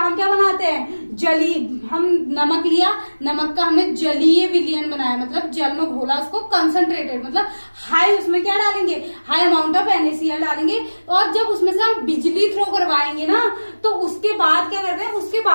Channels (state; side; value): inverted; both; correlation -1.00